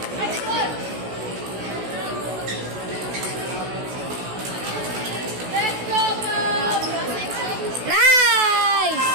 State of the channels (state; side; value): late; left; 16 ms